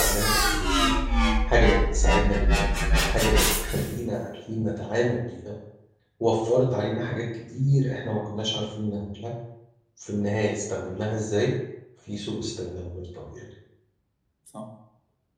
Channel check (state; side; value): identical; both; correlation 1.00